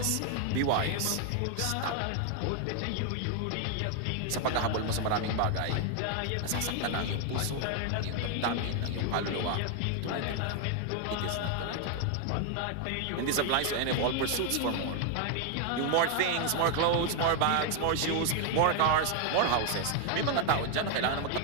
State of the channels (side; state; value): both; different; correlation 0.00